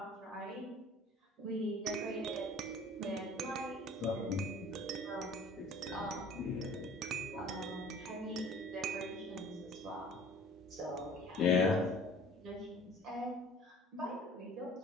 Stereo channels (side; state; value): both; normal; correlation 0.48